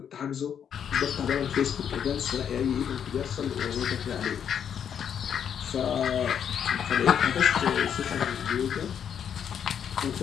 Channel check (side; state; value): right; quieter; 8.3 dB